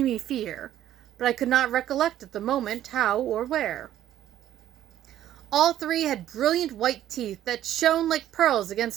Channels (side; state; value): left; quieter; 12.1 dB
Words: fear, but I could not recollect at the moment how or where. All three had brilliant white teeth that shone like pearls